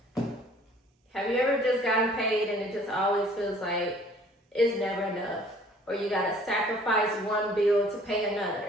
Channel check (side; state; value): both; normal; correlation 0.55